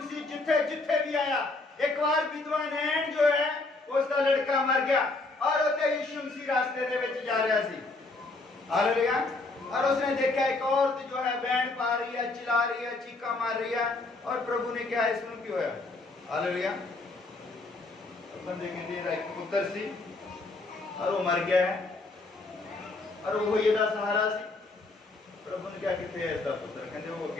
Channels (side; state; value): right; quieter; 3.3 dB